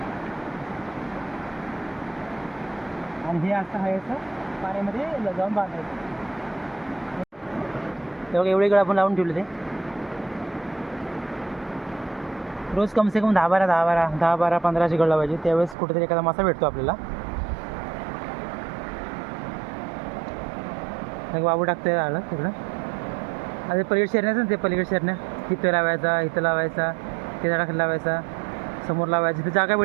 आणि हे असं आहे असं पाण्यामध्ये जाऊन बांधायचं. तेव्हा एवढे गळ आपण लावून ठेवले. ते रोज कमसे कम 10-12 गळ लावायचे. त्यावेळेस कुठेतरी एखादा मासा भेटतो आपल्याला. मग बाबू टाकतोय आलं तिकडं. आता पलीकडे शेरण्याचं ना, ते पलीकडे शेरण्या इथं लावायचा, इथं लावायचा, ते झाडाखाली लावायचा, समोर लावायची. तिथं जागा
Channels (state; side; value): drops out; left; at 15.8 s